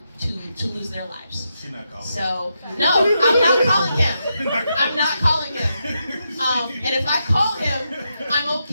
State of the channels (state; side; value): inverted; both; correlation -0.84